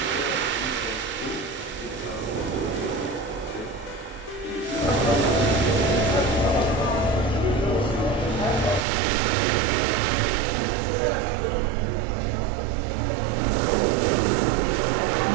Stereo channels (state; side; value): drops out; left; at 8.8 s